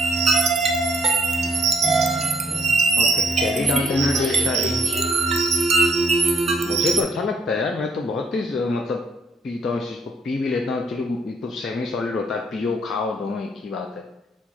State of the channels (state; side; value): normal; both; correlation 0.67